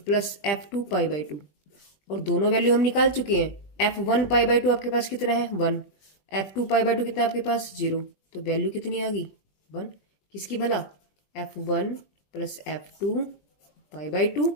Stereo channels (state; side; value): late; right; 20 ms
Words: plus f2 pi by 2। और दोनों वैल्यू हम निकाल चुके हैं। f1 पाई बाई 2 आपके पास कितना है 1, f2 पाई बाई 2 कितना आपके पास 0। तो वैल्यू कितनी आ गई 1, किसकी भला, f1 plus f2 pi by 2,